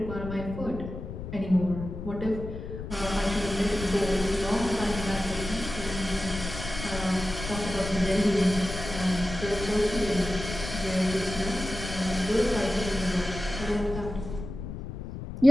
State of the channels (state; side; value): noise; left; rumble, 8 dB below the sound